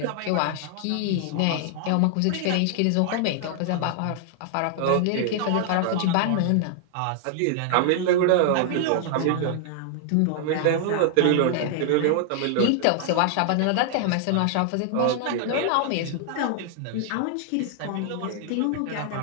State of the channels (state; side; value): different; both; correlation 0.00